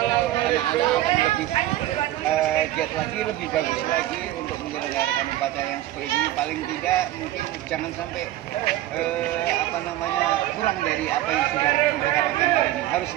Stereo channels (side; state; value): left; quieter; 14.5 dB